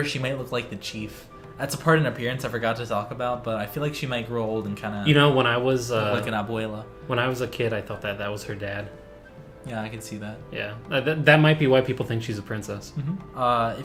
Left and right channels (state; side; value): identical; both; correlation 1.00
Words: she might look like the chief. That's a part in appearance I forgot to talk about, but I feel like she might grow old and kind of... when I was... look like an abuela. When I was a kid, I thought that was her dad. Yeah, I can see that. Yeah, that might be why people think she's a princess. Mm-hmm.